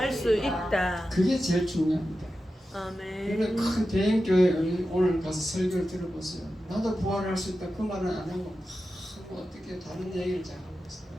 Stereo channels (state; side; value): normal; both; correlation 0.92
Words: 수 있다. 그게 제일 중요합니다. 아멘. 그러면 큰 대형교회 오늘 가서 설교를 들어보세요. 나도 부활할 수 있다. 그 말은 안 하고 어떻게 다른 얘기를 잘 하고 있어요.